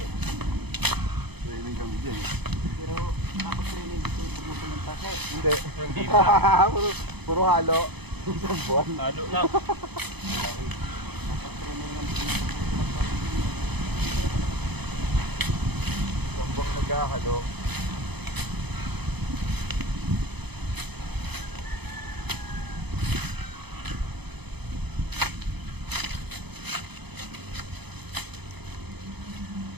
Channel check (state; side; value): late; left; 0.98 ms